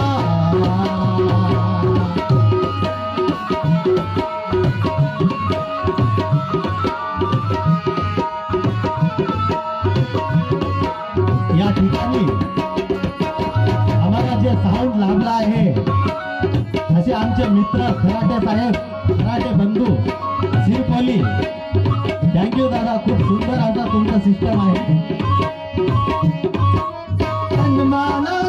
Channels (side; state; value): both; identical; correlation 1.00